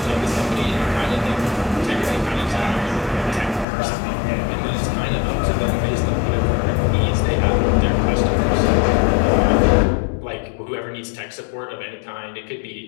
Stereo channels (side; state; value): right; drops out; at 3.7 s